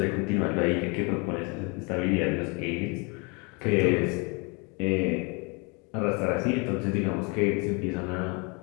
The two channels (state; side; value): quieter; right; 31.4 dB